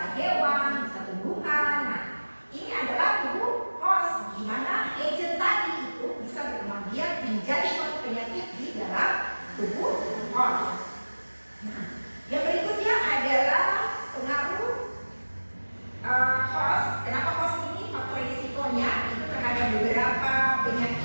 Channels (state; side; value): inverted; both; correlation -1.00